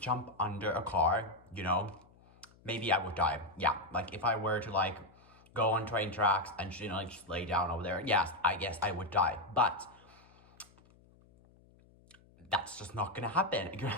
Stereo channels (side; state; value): left; noise; hum, 28 dB below the sound